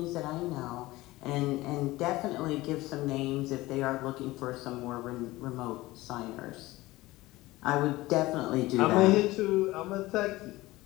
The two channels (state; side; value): quieter; right; 19.0 dB